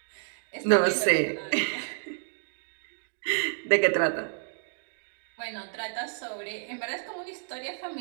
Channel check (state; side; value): silent; left; digital silence